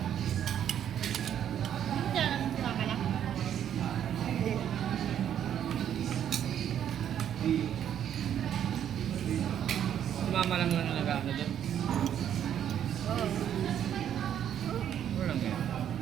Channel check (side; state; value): left; quieter; 9.8 dB